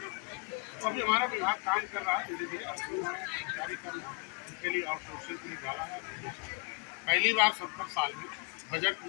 अभी हमारा विभाग काम कर रहा है, उनके लिए आउटसोर्सिंग के लिए डाला है। पहली बार 70 साल में बजट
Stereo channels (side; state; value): right; quieter; 32.5 dB